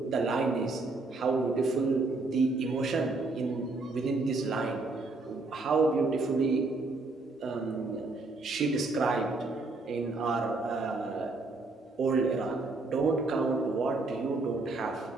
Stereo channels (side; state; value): left; quieter; 3.4 dB